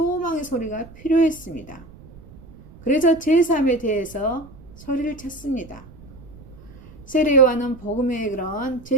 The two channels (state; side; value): noise; right; rumble, 20 dB below the sound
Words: 소리가 필요했습니다. 그래서 제3에 대해서 소리를 쳤습니다. 세례 요한은 복음의 그런